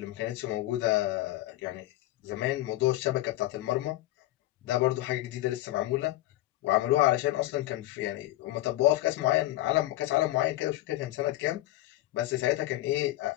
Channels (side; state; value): right; quieter; 16.3 dB